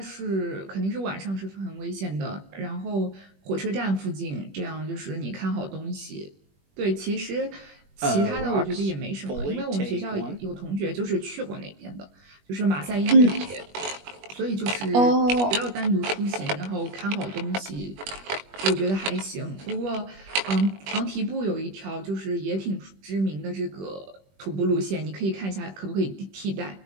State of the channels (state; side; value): late; left; 21 ms